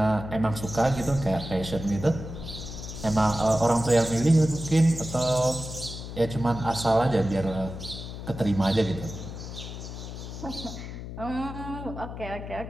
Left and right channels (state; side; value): noise; left; hum, 9 dB below the sound